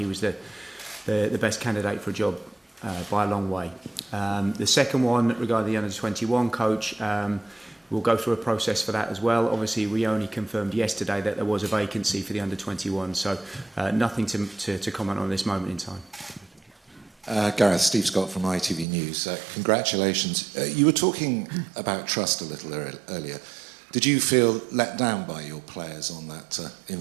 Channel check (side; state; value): left; drops out; at 18.9 s